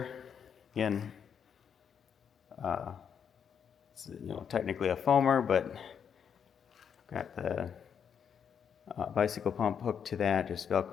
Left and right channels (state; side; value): quieter; right; 7.5 dB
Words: again, it's, technically a foamer, but got the bicycle pump hooked to that, just